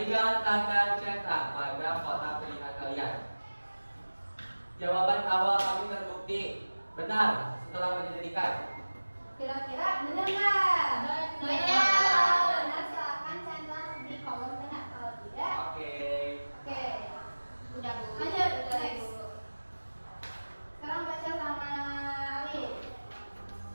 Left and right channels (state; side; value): inverted; both; correlation -1.00